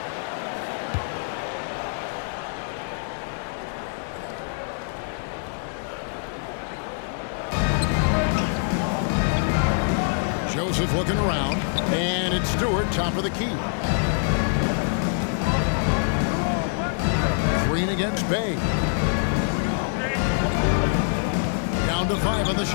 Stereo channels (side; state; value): right; silent; digital silence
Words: Joseph looking around, and it's Stewart, top of the key. Green against Bay. Down to 5 on the